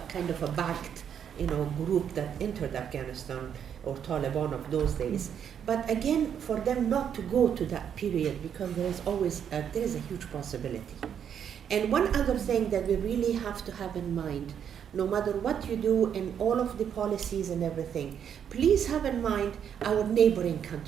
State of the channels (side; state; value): left; quieter; 8.5 dB